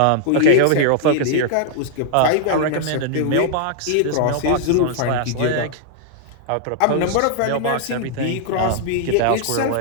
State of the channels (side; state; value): both; different; correlation 0.00